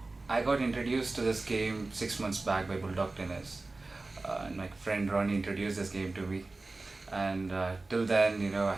I got introduced to this game 6 months back by Bulldog Tennis, and my friend Ronnie introduced this game to me. And till then, I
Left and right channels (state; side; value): quieter; left; 3.3 dB